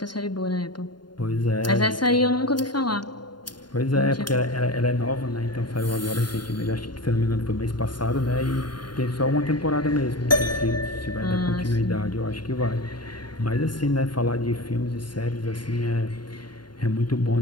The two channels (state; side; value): late; right; 0.71 ms